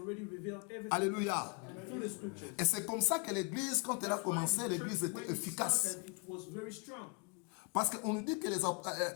revealed everything Alléluia. through the scriptures. Et c'est comme ça que l'église, quand elle a That's why commencé, the l'église church, when était it efficace. started, it was very strong. Parce qu'on nous dit que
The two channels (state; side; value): quieter; right; 33.3 dB